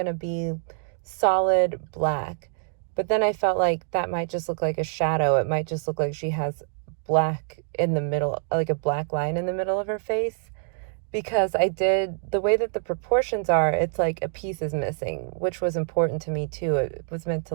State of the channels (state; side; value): silent; left; 61 dB below the other